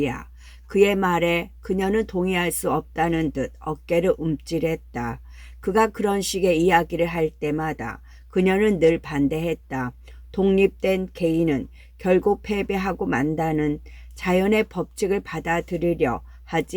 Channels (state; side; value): identical; both; correlation 1.00